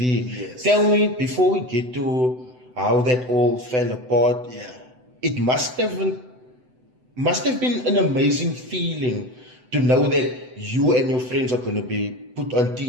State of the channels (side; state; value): left; late; 7.9 ms